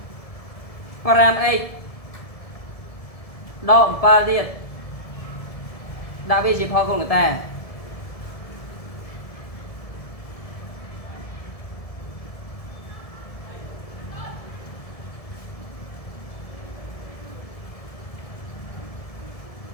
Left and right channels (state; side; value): late; right; 1.7 ms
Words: 5x ដក 7 ទៀតដាក់វាជាផលកូនកតា